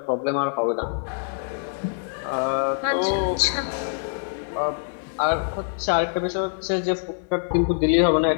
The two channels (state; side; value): silent; right; digital silence